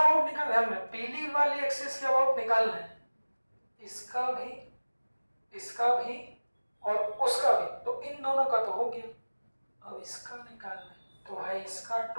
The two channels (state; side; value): inverted; both; correlation -1.00